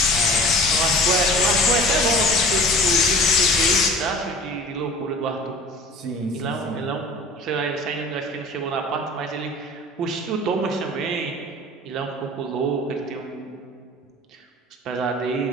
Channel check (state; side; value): normal; both; correlation 0.43